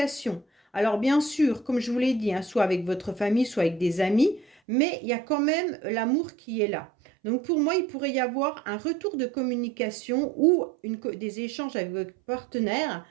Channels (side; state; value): left; drops out; at 4.5 s